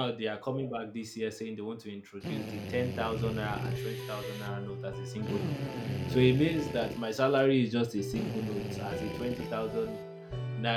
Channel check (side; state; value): both; identical; correlation 1.00